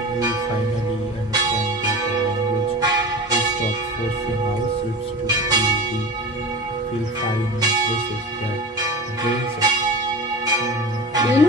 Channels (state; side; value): normal; both; correlation 0.32